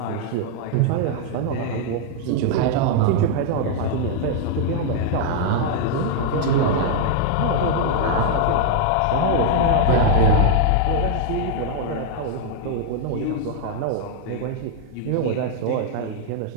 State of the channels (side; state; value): both; different; correlation 0.00